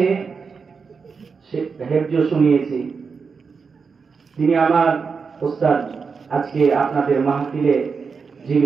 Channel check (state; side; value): quieter; left; 5.3 dB